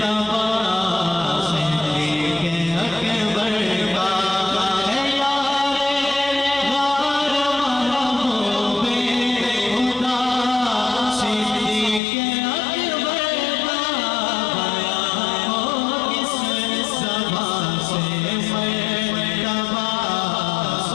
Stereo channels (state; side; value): drops out; right; at 12.0 s